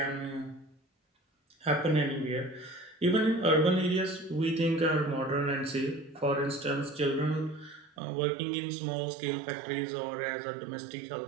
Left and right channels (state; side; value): drops out; left; at 7.9 s